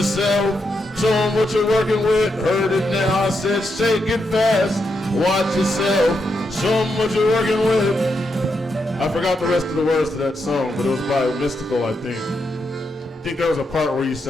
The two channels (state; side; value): normal; both; correlation 0.83